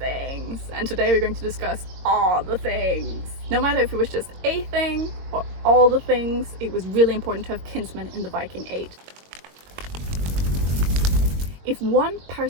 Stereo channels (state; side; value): late; left; 22 ms